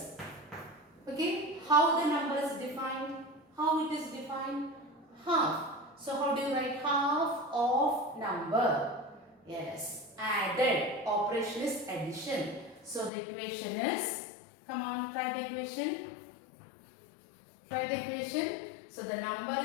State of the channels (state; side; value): drops out; right; at 13.1 s